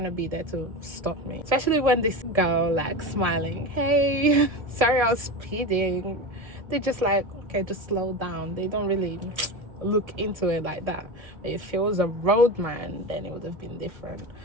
be there to stop me? Especially when this girl like smiling, hey, sorry I was speeding. They're just like, okay, just slow down. They don't really look into it like that. But if it was a roadman, then it would have been different.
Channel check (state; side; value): late; left; 1.7 ms